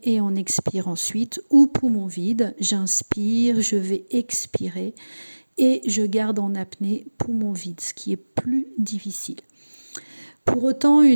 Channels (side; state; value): both; inverted; correlation -1.00